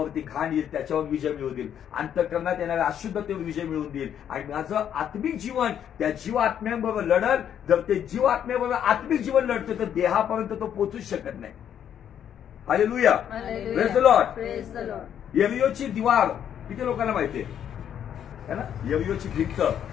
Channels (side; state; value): right; quieter; 9.4 dB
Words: घाण येईल त्याच्यावर विजय मिळवून देईल, अंतःकरणात येणाऱ्या अशुद्धतेवर विजय मिळवून देईल. आणि माझं आत्मिक जीवन त्या जीव आत्म्यांबरोबर लढल. जर ते जीव आत्म्याबरोबर आत्मिक जीवन लढतं तर देहापर्यंत तो पोहोचूच शकत नाही. Hallelujah, praise the Lord. Praise the Lord. यरियोची दिवार किती लोकांना माहितीये है ना? यरियोची भिंत,